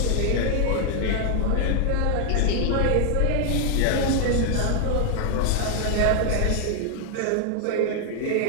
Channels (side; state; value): both; different; correlation 0.00